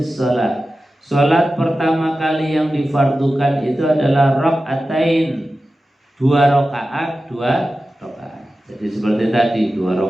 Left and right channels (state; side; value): normal; both; correlation 0.94